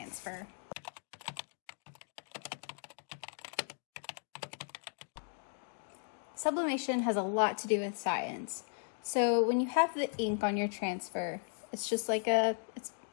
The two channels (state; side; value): silent; right; 53 dB below the other